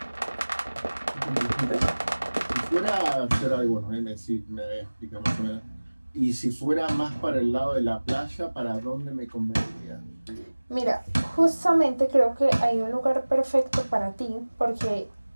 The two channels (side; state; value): both; inverted; correlation -1.00